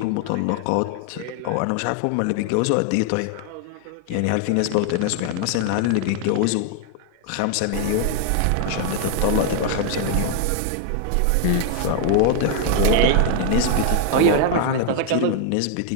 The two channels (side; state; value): both; different; correlation 0.00